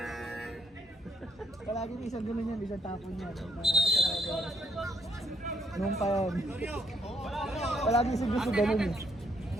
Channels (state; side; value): normal; both; correlation 0.70